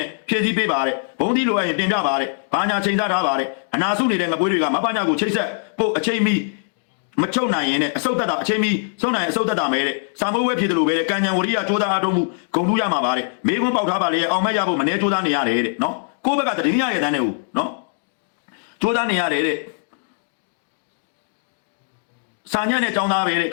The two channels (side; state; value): right; silent; digital silence